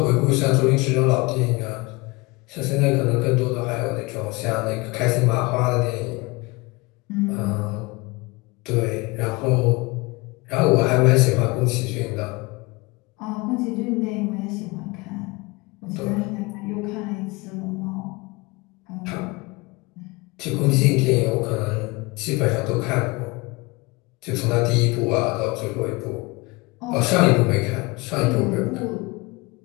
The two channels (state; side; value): quieter; right; 25.1 dB